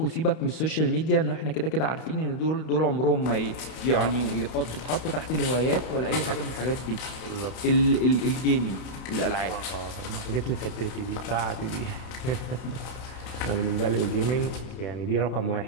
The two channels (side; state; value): right; late; 32 ms